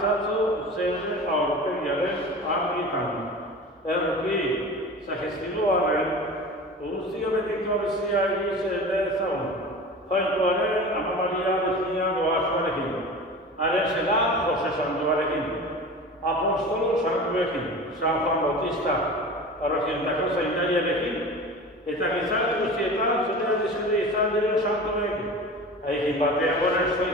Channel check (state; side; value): normal; both; correlation 0.35